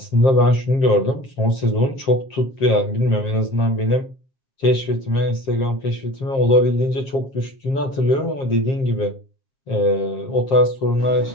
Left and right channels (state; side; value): late; right; 7.5 ms